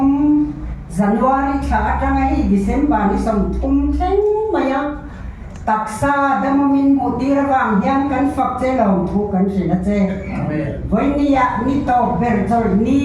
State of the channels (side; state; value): both; identical; correlation 1.00